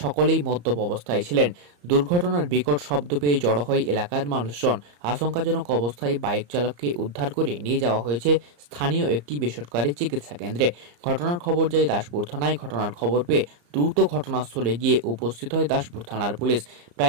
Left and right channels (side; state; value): left; late; 34 ms